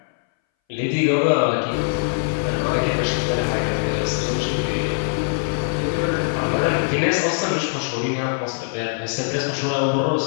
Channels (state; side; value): silent; right; 62 dB below the other